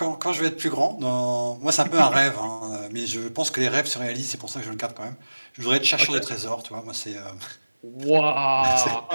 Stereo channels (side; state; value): both; inverted; correlation -1.00